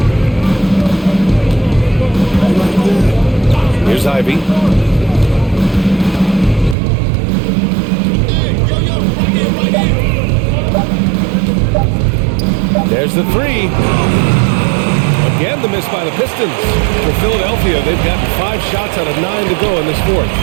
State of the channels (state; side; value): drops out; left; at 6.8 s